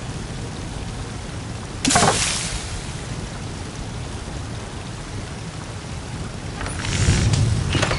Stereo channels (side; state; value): both; identical; correlation 1.00